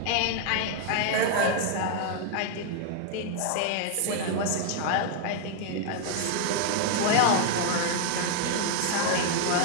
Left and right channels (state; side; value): different; both; correlation 0.00